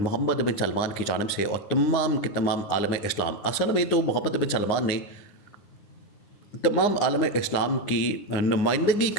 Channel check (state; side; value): late; right; 9.8 ms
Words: بن سلمان کی جانب سے اور تمام کے تمام عالم اسلام، اصل میں تو محمد بن سلمان نے تمام عالم اسلام کی نمائندگی